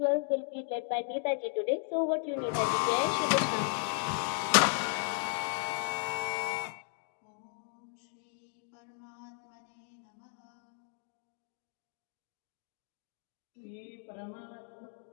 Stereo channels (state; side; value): silent; right; 54 dB below the other